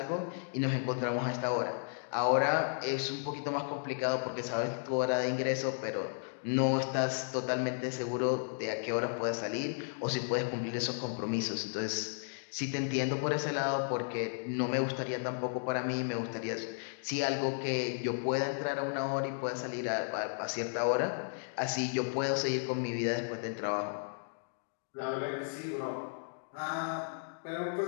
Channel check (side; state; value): right; silent; digital silence